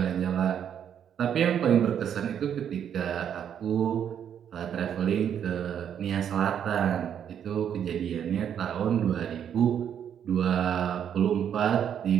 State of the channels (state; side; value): quieter; left; 8.8 dB